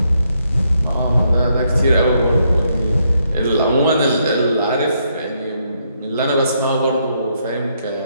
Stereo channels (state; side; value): inverted; both; correlation -0.76